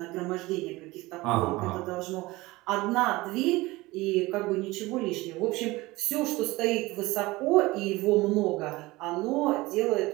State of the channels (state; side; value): quieter; left; 20.6 dB